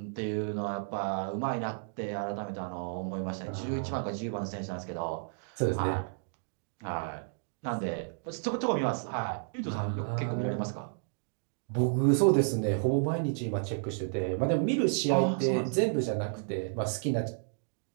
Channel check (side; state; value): left; silent; digital silence